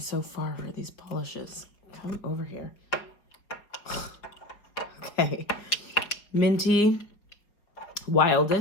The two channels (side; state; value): right; late; 4.9 ms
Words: far for these polishes. Come over here. Okay. Minty.